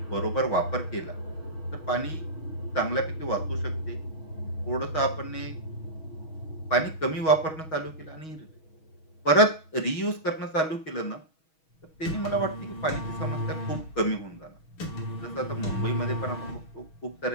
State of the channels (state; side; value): late; right; 6.3 ms